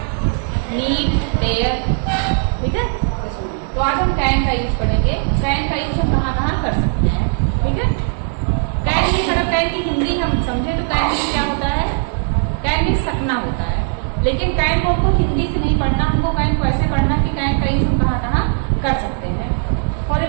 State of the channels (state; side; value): silent; left; 55 dB below the other